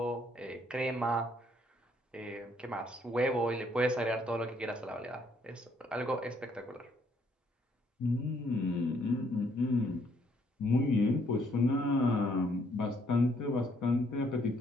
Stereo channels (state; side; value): normal; both; correlation 0.68